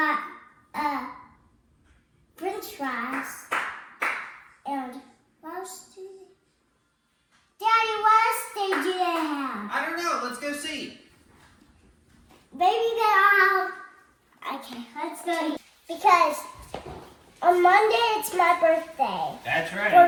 French fries. And what else do they? Daddy, what else do they have? I don't know. Let's go see. Maybe they all have. Okay, let's go. Because on Monday it's my birthday. That's right.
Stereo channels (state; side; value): identical; both; correlation 1.00